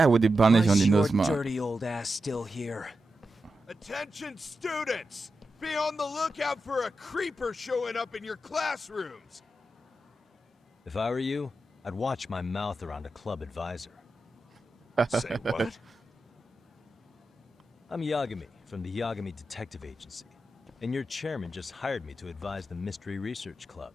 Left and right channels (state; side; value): normal; both; correlation 0.89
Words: with the bandage Why on the is your nose, man. dirty old ass still here? Attention students! Be on the lookout for a creeper showing up in your classrooms! If I were you, I'd watch my mouth around a club advisor. Say what? I'm Yagami from the Yagami Detective Agency, and your chairman just hired me to advise the Mystery Research Club.